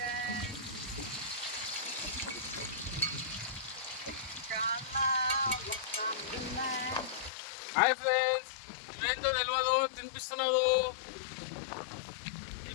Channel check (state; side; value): drops out; right; at 7.3 s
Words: హాయ్ ఫ్రెండ్స్, ఇవేంతో తెలియదు తినిపిస్తున్నదు. ఈ